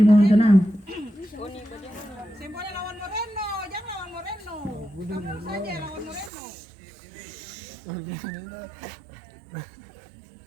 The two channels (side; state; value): left; drops out; at 6.3 s